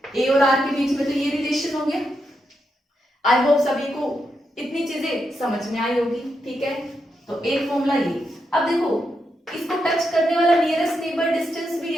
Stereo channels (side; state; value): both; normal; correlation 0.84